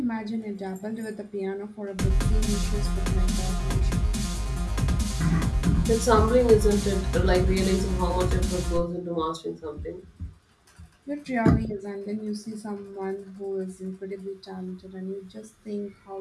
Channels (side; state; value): both; identical; correlation 1.00